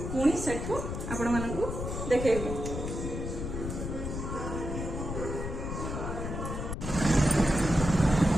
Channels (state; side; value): noise; left; rumble, 5 dB below the sound